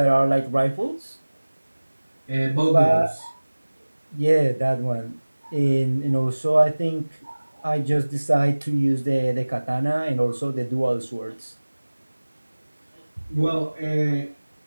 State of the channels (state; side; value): inverted; both; correlation -1.00